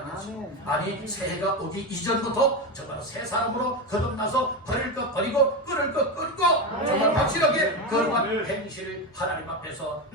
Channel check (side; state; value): both; normal; correlation 0.16